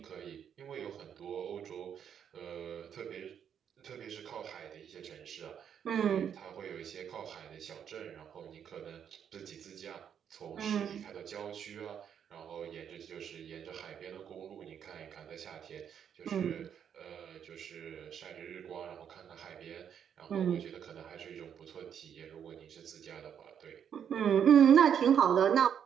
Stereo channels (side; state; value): left; quieter; 8.4 dB